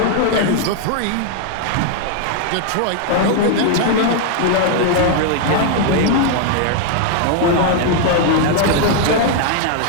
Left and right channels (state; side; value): different; both; correlation 0.00